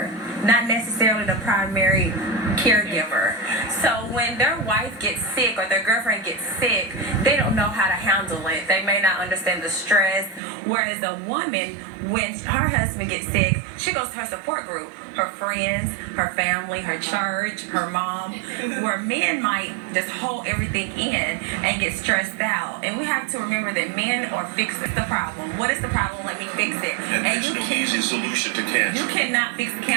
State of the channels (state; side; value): drops out; left; at 10.4 s